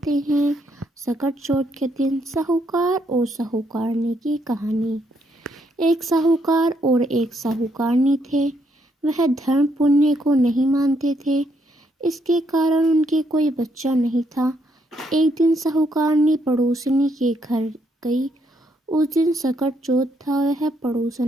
हैं सकट चौथ के दिन साहूकार और साहूकारनी की कहानी। एक साहूकार और एक साहूकारनी थे। वह धर्म पुण्य को नहीं मानते थे। इसके कारण उनके कोई बच्चा नहीं था। एक दिन साहूकारनी पड़ोसनी के घर गई। उस दिन सकट चौथ था। वह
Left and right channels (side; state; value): both; normal; correlation 0.74